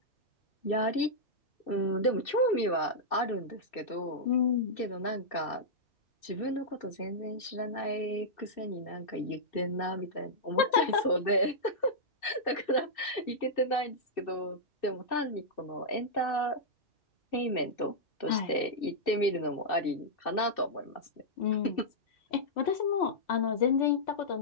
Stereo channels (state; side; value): late; right; 2.7 ms